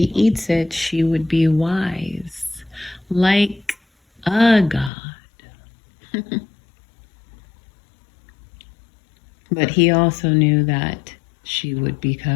eats it, she would be wise, like a god. But he also knew that she would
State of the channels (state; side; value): drops out; right; at 4.9 s